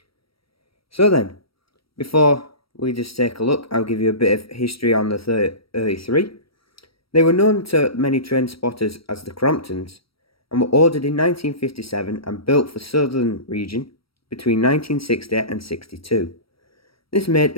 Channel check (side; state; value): right; late; 0.75 ms